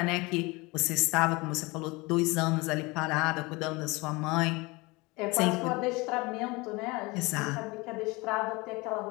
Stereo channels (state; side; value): quieter; right; 24.4 dB